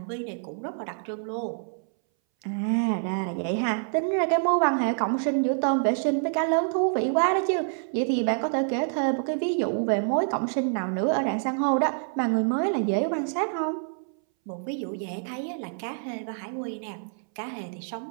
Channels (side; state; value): left; silent; 60 dB below the other